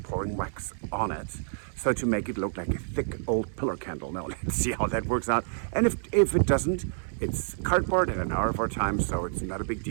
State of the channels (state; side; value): silent; left; 59 dB below the other